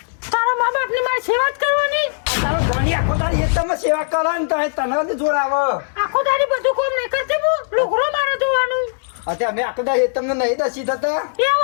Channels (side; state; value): right; silent; digital silence